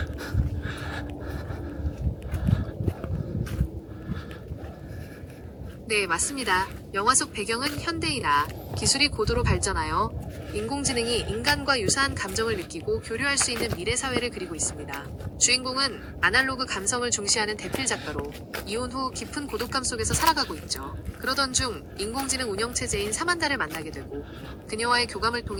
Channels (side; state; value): both; identical; correlation 1.00